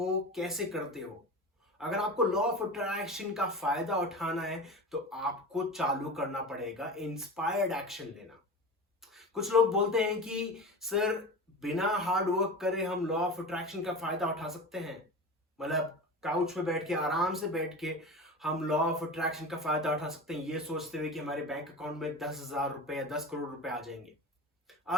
कैसे करते हो। अगर आपको लॉ ऑफ अट्रैक्शन का फायदा उठाना है तो आपको चालू करना पड़ेगा इंस्पायर्ड एक्शन लेना। कुछ लोग बोलते हैं कि सर, बिना हार्ड वर्क करे हम लॉ ऑफ अट्रैक्शन का फायदा उठा सकते हैं। मतलब काउच पे बैठ के, आराम से बैठ के हम लॉ ऑफ अट्रैक्शन का फायदा उठा सकते हैं, ये सोचते हुए कि हमारे बैंक अकाउंट में 10,000 रुपए या 10 करोड़ रुपए आ जाएंगे।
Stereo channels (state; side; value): normal; both; correlation 0.30